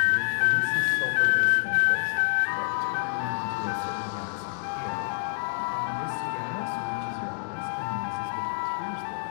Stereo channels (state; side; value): silent; right; digital silence